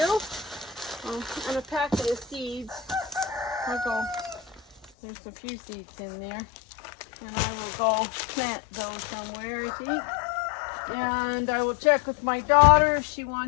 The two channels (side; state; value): right; drops out; at 4.9 s